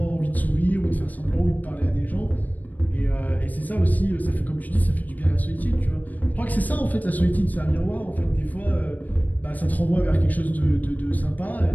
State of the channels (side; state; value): right; late; 0.081 ms